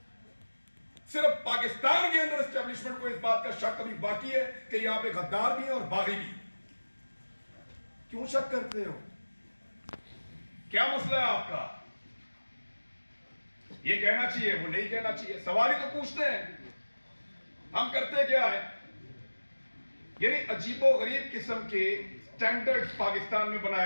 صرف پاکستان کے اندر اسٹیبلشمنٹ کو اس بات کا شک ابھی باقی ہے کہ یہاں پہ غدار بھی ہیں اور باغی بھی. کیوں شک کرتے ہو؟ کیا مسئلہ ہے آپ کا؟ یہ کہنا چاہیے، وہ نہیں کہنا چاہیے. سوال ہی تو پوچھتے ہیں. ہم کرتے کیا ہے؟ یعنی عجیب و غریب قسم کے سٹینڈرڈ پاکستان میں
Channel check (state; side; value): inverted; both; correlation -1.00